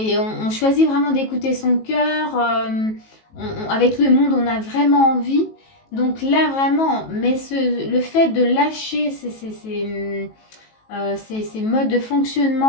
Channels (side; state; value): right; late; 18 ms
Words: on choisit vraiment d'écouter son cœur. Avec le monde, on a vraiment envie. Donc là, vraiment, mais le fait de lâcher ces modes de